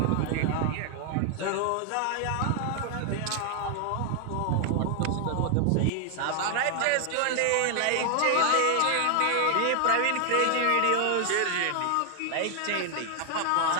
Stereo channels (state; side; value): different; both; correlation 0.00